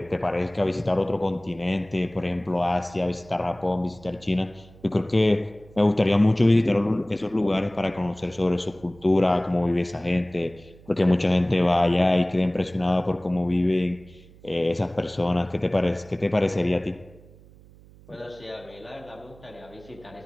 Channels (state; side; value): noise; right; hum, 24 dB below the sound